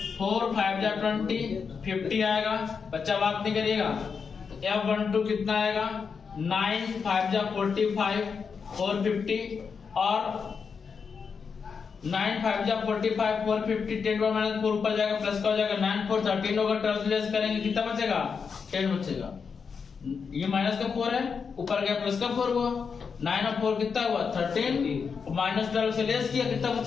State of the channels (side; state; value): right; quieter; 5.8 dB